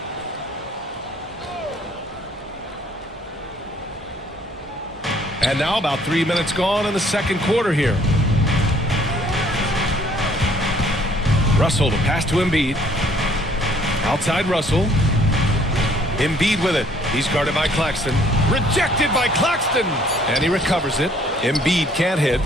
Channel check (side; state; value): both; normal; correlation 0.61